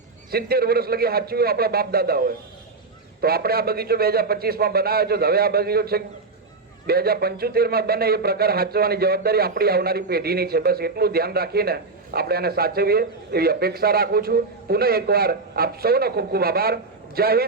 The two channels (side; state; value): left; quieter; 3.9 dB